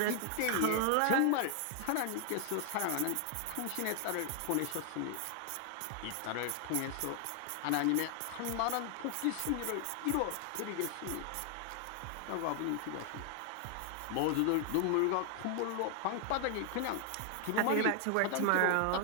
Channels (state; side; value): different; both; correlation 0.00